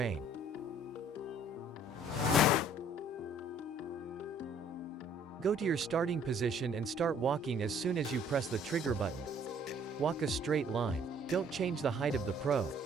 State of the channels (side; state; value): both; normal; correlation 0.58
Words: Go to your starting position and start walking as soon as you press the trigger button. Walk a straight line. Don't change the height of the probe.